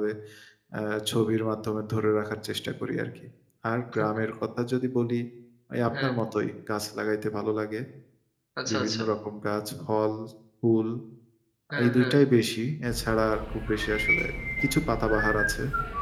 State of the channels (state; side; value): identical; both; correlation 1.00